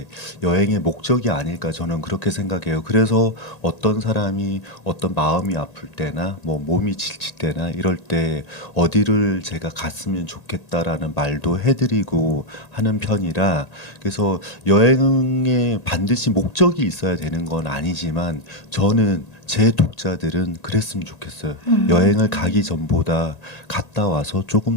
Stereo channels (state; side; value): late; right; 1.8 ms